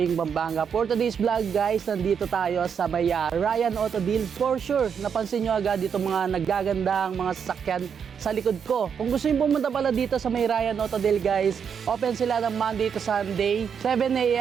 Pampanga. For today's vlog, guys, nandito tayo sa may Ryan Auto Deal. For sure, napansin nyo agad dito mga naggagandang mga sasakyan sa likod ko. Kung gusto nyo pumunta pala dito sa may Ryan Auto Deal, guys, open sila ng Monday to Sunday, 7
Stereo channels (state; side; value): quieter; left; 7.2 dB